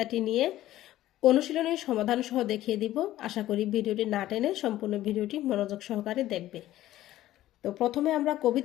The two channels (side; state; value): right; quieter; 14.4 dB